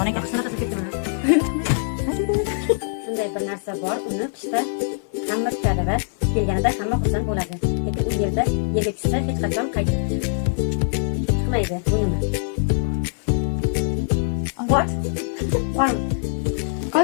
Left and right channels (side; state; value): right; silent; 64 dB below the other